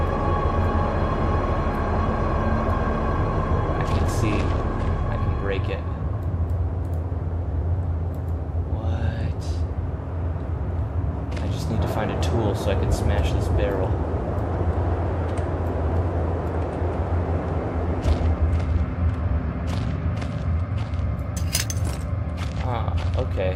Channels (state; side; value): identical; both; correlation 1.00